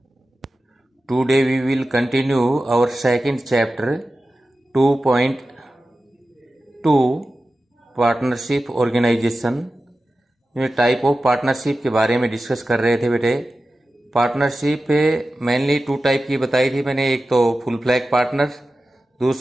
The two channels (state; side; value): normal; both; correlation 0.94